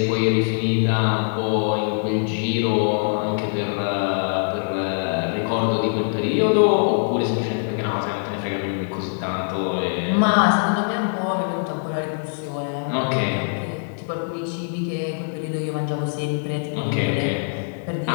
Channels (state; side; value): silent; right; 60 dB below the other